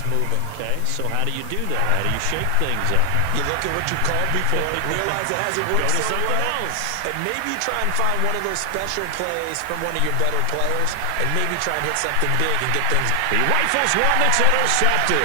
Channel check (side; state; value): both; different; correlation 0.00